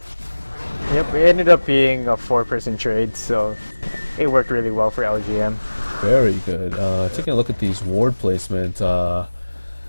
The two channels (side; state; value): both; inverted; correlation -1.00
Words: Yep, it ended up being a 4-person trade, so it worked really well for LGM. Very good. Taking a look at these ward placement,